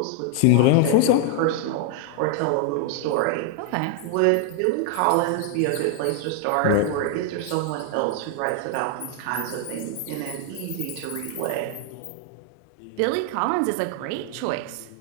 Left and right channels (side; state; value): both; different; correlation 0.00